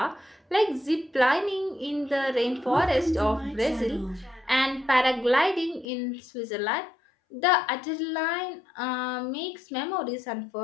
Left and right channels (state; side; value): drops out; right; at 5.9 s